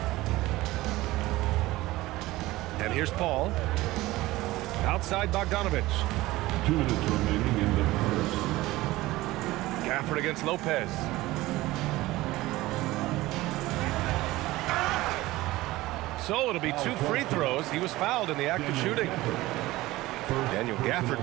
And here's Paul. Outside Bogdanovich. 2 minutes remaining in the first. Gafford against Lopez. So it'll be 2 free throws. He was fouled in the act of shooting. Daniel Gafford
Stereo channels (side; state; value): left; quieter; 18.3 dB